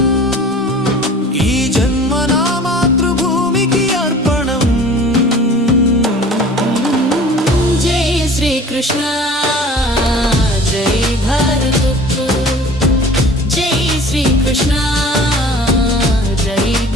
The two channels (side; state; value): both; normal; correlation 0.44